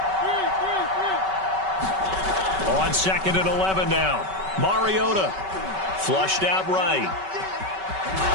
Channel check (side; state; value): left; late; 5.2 ms